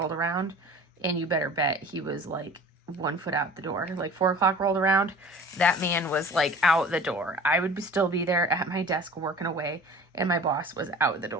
around, and you better bet he was like 1 foot out the door. Like 4 o'clock rolled around, that man was like out the door. I would still be there at my desk working away, and my boss was out the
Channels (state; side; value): normal; both; correlation 0.43